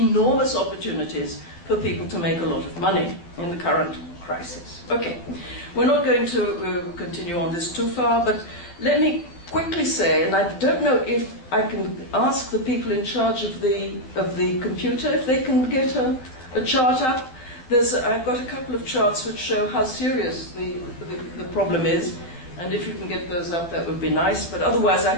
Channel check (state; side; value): late; right; 12 ms